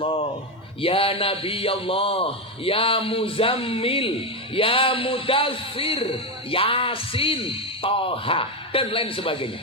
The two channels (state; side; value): normal; both; correlation 0.10